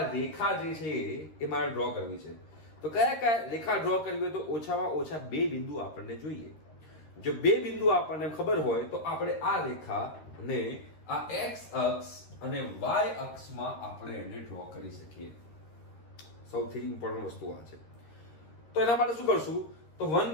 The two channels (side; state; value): right; late; 13 ms